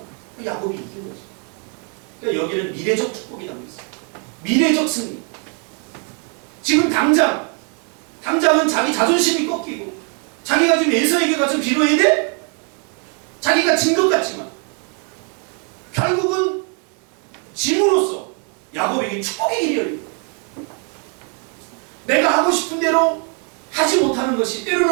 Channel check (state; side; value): quieter; left; 38.1 dB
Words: 야곱이 이긴 거죠. 그러니까 여기는 미래적 축복이 담겨 있어요. 미래적 승리. 지금 당장은 자기 자존심이 꺾이고 자기가 지금 에서에게 가서 빌어야 돼? 자기가 진 것 같지만 결국은 짐으로써 야곱에게 축복의 길이 열립니다. 내가 하고 싶은 대로 하지 못하는 것이